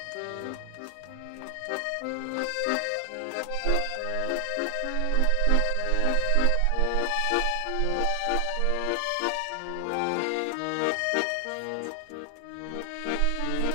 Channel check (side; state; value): both; different; correlation 0.00